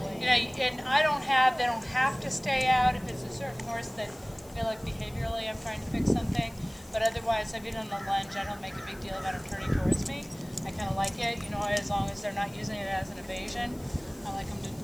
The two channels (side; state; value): left; noise; hiss, 24 dB below the sound